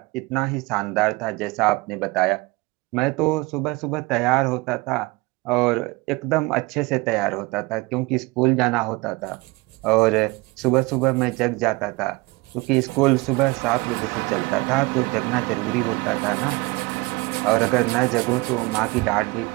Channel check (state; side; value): quieter; left; 23.8 dB